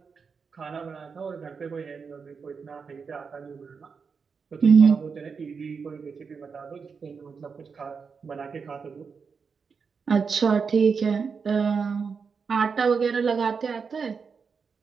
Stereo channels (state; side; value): quieter; left; 5.6 dB